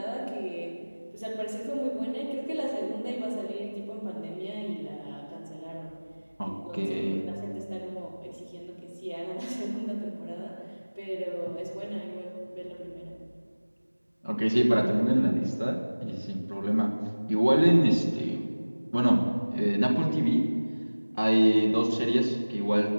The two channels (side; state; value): both; inverted; correlation -1.00